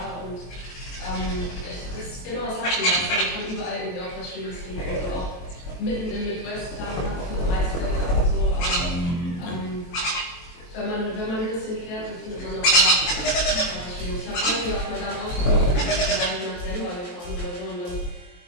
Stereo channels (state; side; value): late; right; 23 ms